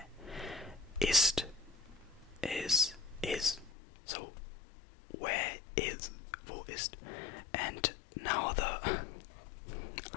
Ist is. So where is, wo ist. And now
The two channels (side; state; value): right; drops out; at 3.7 s